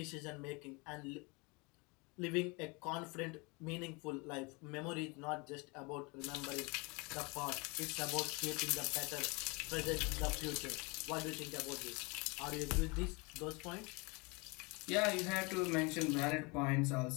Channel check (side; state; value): right; quieter; 28.7 dB